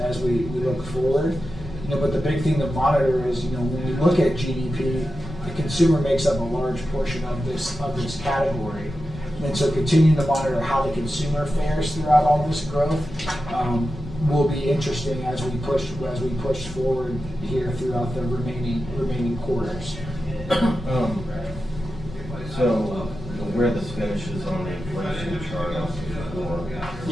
we look forward. But the big thing to monitor is, when we look at GDP, the consumer makes up a large portion of this category. And so continuing to monitor how the consumer fares throughout all this growth will be interesting as we push forward here throughout the remaining quarters. So where this finishes on the inflation chart on page 4.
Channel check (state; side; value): noise; left; rumble, 18 dB below the sound